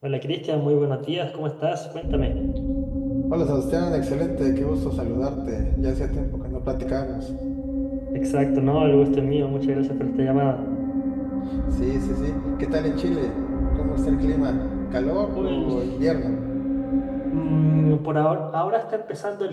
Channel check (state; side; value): identical; both; correlation 1.00